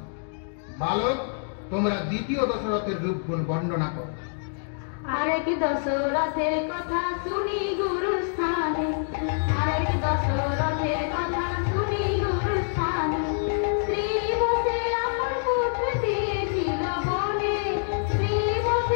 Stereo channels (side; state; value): right; silent; digital silence